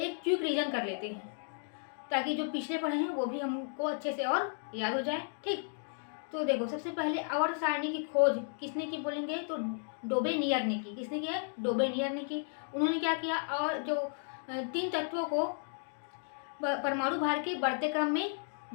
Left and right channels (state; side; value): silent; right; 55 dB below the other